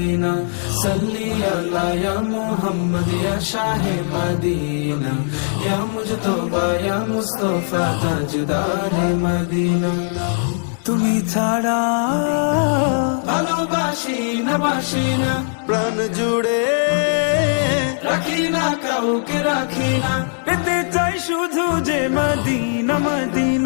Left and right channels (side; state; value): right; silent; digital silence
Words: صلی علی یا محمد یا شاہ مدینہ یا مجتبی یا مصطفی تاجدار مدینہ তুমি ছাড়া বাসি না, প্রাণ জুড়ে রাখি না কাউকে রাখি না, পেতে চাই শুধু যে মদিনা